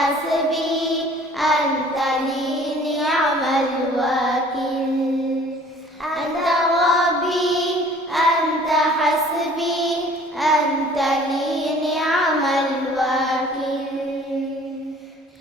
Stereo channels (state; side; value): normal; both; correlation 0.51